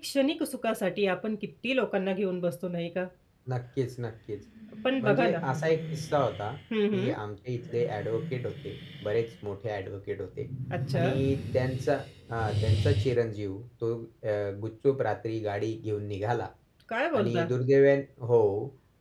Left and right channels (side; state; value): both; identical; correlation 1.00